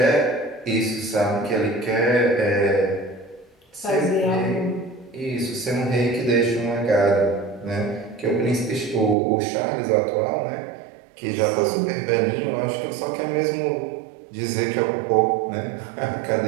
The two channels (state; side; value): drops out; left; at 9.2 s